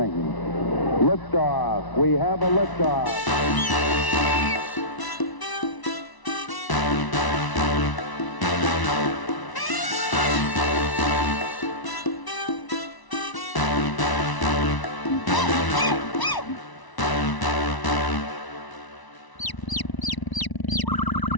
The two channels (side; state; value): right; late; 1.0 ms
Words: Liftoff. We have a liftoff.